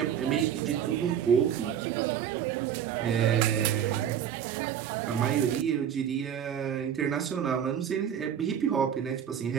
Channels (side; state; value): left; quieter; 9.0 dB